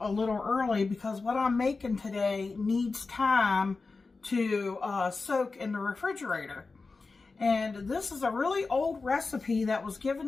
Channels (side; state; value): right; quieter; 4.0 dB